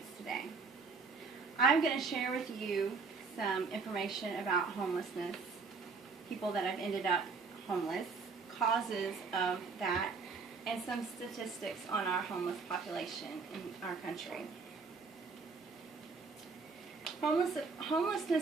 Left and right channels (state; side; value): quieter; left; 4.7 dB